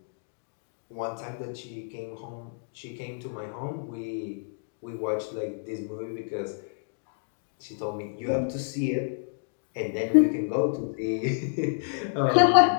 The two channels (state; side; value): silent; right; digital silence